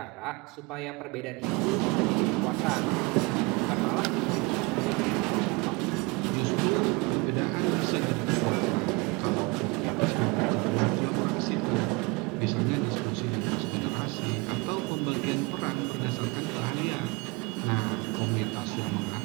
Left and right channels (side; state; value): left; quieter; 26.4 dB